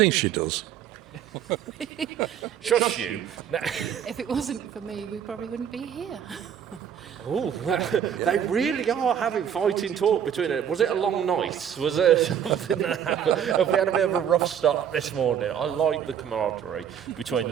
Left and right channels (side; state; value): left; quieter; 8.9 dB